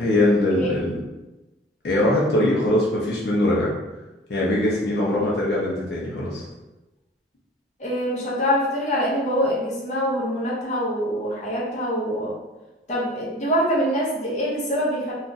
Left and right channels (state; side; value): normal; both; correlation 0.44